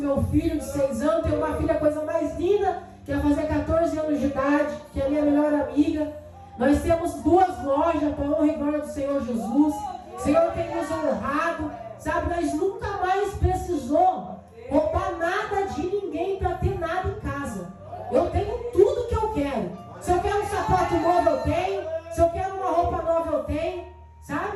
filho de 6 anos, tenho uma filha, a coisa mais linda, que vai fazer 14 anos de idade, que é a minha melhor amiga. Nós temos 2 lojas, para a honra e glória do Senhor Jesus. O Senhor tem nos honrado, sabe? Nós nunca mais precisou roubar nada de ninguém para ter nada em casa. Eu tenho tudo que eu quero. Se eu quero um sapato novo, eu tenho. Se eu quero uma roupa nova, eu tenho.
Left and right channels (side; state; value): both; identical; correlation 1.00